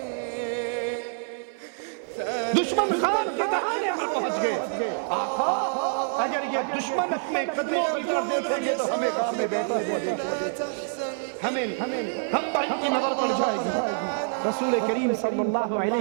دشمن خان کے دہانے پر پہنچ گئے۔ آقا اگر یہ دشمن اپنے قدموں کی طرف دیکھیں گے تو ہمیں گھر میں بیٹھے ہوئے دیکھیں گے، ہم پر ان کی نظر پڑ جائے گی۔ رسول کریم صلی اللہ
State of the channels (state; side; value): silent; left; 60 dB below the other